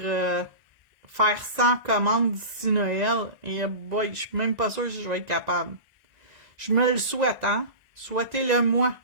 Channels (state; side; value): late; left; 1.9 ms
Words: faire 100 commandes d'ici Noël. Et boy, je suis même pas sûre si je vais être capable. Je me le souhaite, hein? Souhaitez-le moi.